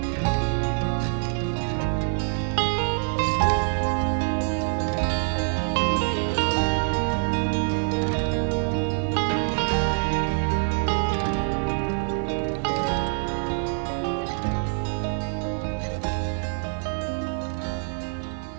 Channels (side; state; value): left; silent; digital silence